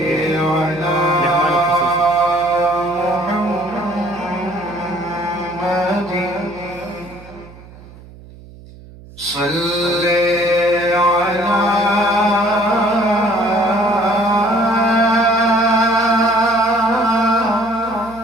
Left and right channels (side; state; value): right; noise; hum, 20 dB below the sound